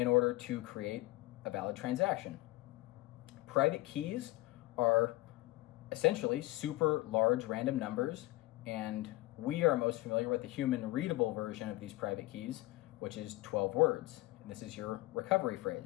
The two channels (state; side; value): quieter; right; 19.3 dB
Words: order to create a valid transaction. Private keys are essentially super large random numbers, and we are most familiar with the human readable version of these private keys, which is 12 words, and this is your recovery